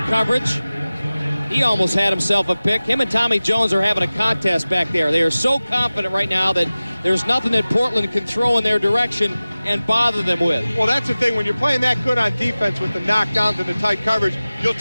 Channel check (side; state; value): both; inverted; correlation -0.97